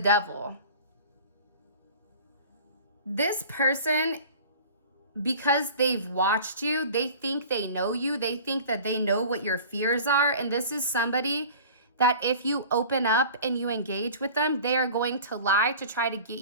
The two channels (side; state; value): both; inverted; correlation -0.41